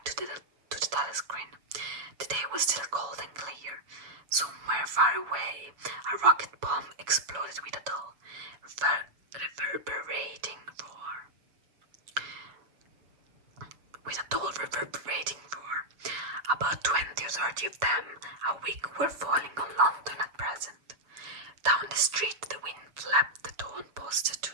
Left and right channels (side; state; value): left; late; 7.0 ms